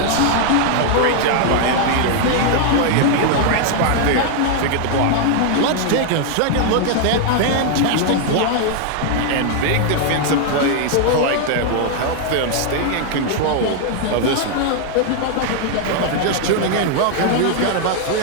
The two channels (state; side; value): different; both; correlation 0.00